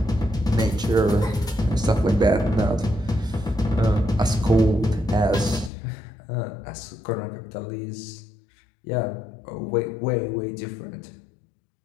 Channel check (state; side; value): drops out; right; at 5.7 s